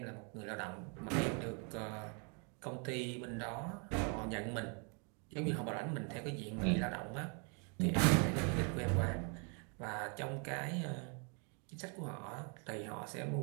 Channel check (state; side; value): quieter; left; 37.4 dB